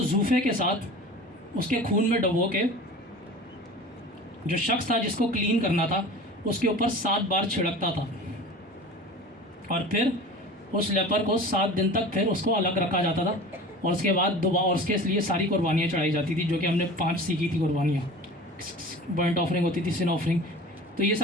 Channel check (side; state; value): both; normal; correlation 0.38